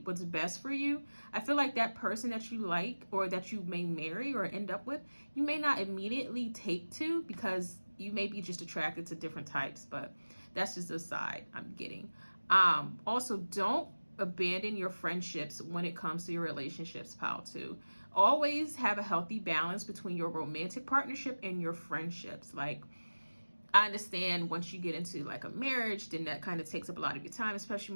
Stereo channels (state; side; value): inverted; both; correlation -1.00